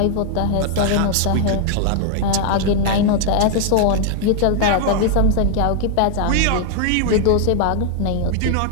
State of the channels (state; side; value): different; both; correlation 0.00